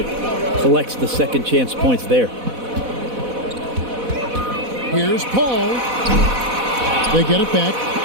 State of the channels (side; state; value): left; late; 4.1 ms